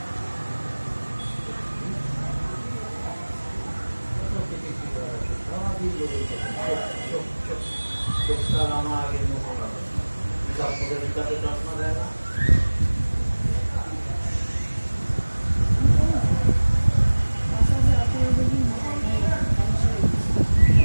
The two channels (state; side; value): inverted; both; correlation -1.00